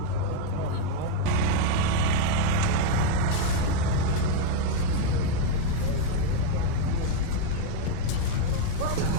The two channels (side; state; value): both; different; correlation 0.01